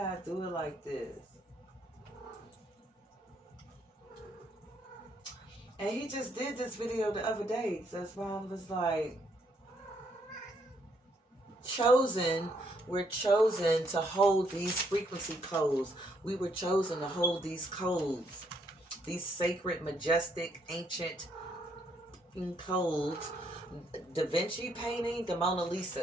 do it like this? And he just did this video the other day. So that's why I was like... We're chosen to hold these frequency codes. We were chosen to hold these codes. These sacred, majestic, ancient codes. Da Vinci painting, the Mona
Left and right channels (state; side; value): normal; both; correlation 0.71